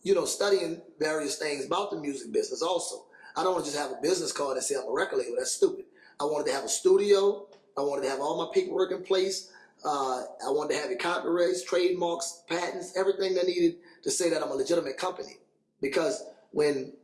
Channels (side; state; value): both; identical; correlation 1.00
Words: studying various things about the music business also. I don't want to just have a business card and say I'm a record label. That's stupid. I wanted to have a studio. I wanted to have all my paperwork in place. I wanted to have it copyrights, trademarks, patents, everything that needed to say that I'm a legitimate company. Because when